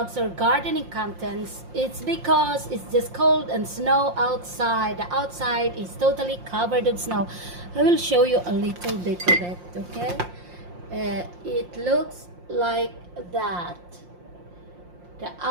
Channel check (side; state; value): left; late; 5.7 ms